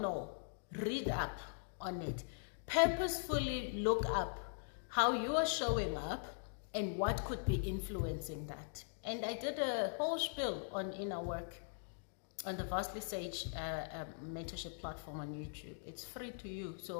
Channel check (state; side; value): silent; right; digital silence